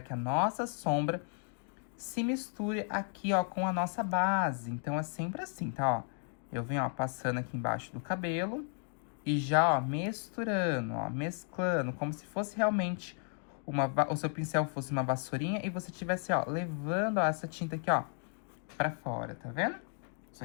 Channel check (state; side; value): silent; right; 55 dB below the other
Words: a nossa sombra se misture aqui, ó, com a nossa base. Então, é sempre assim, tá, ó? Eu venho, ó, passando aqui embaixo do cabelo e já, ó, misturando, ó, mesclando, como se fosse realmente o seu pincel fosse uma vassourinha e você tivesse, ó, levando, ó, essa tinta aqui, ó, pra fora, tá vendo? Isso